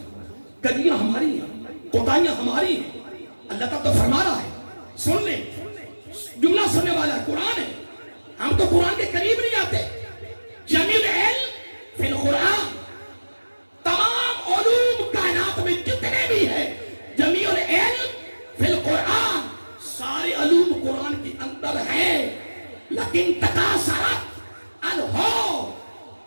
کجیاں ہماری ہیں، کوتاہیاں ہماری ہیں. اللہ تعالیٰ تو فرما رہا ہے، سن لیں، جملہ سننے والا ہے، قرآن ہے. ہم تو قرآن کے قریب نہیں آتے. جمیل علم فی القرآن، تمام علوم کائنات میں جتنے بھی ہیں، جمیل علم فی القرآن، سارے علوم قرآن کے اندر ہیں. لیکن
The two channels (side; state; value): both; inverted; correlation -1.00